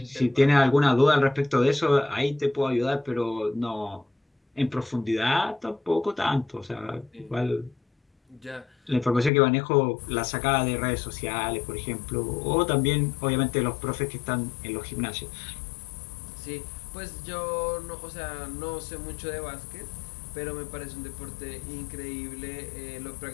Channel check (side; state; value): right; drops out; at 9.3 s